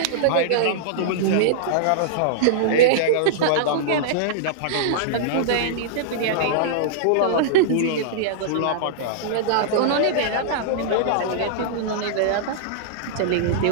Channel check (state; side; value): different; both; correlation -0.02